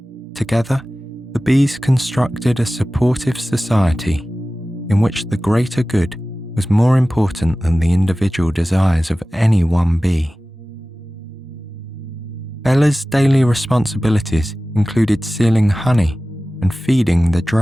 Together, the bees constructed a supportive society in which the greater good was more important than the individual desires of any one bee. Bella's daily responsibilities included sealing honey and feeding the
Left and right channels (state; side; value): normal; both; correlation 0.96